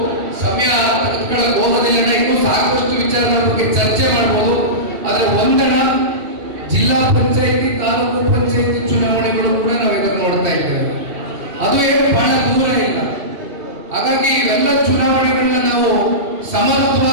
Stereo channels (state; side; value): late; left; 2.7 ms